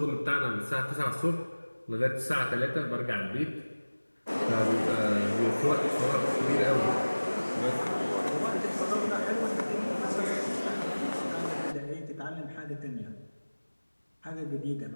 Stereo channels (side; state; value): both; inverted; correlation -1.00